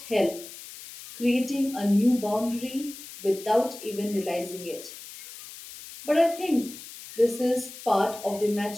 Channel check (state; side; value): noise; left; hiss, 14 dB below the sound